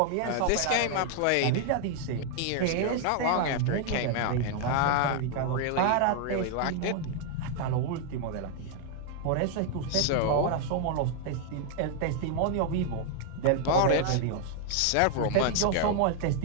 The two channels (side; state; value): both; different; correlation 0.00